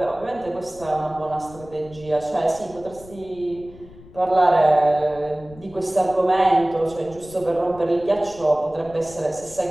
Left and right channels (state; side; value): noise; left; rumble, 20 dB below the sound